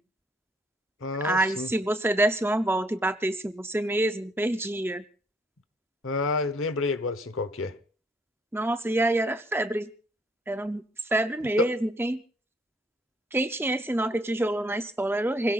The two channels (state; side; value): normal; both; correlation 0.67